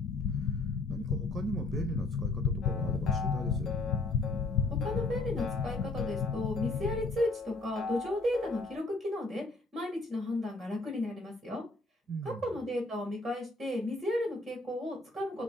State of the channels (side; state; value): right; quieter; 3.0 dB